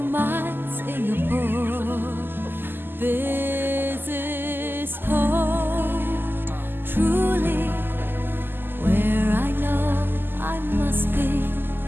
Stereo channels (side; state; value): left; late; 0.096 ms